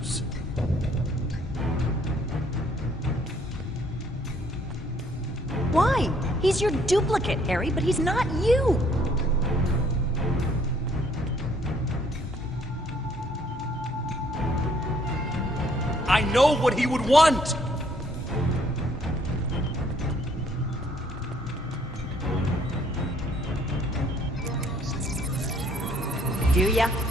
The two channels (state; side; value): normal; both; correlation 0.64